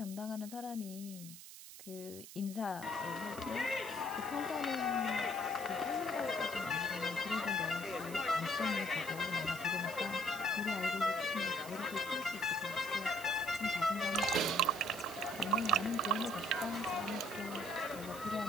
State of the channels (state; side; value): noise; right; hiss, 14 dB below the sound